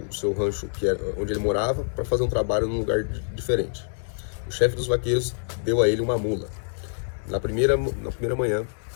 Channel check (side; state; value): right; silent; digital silence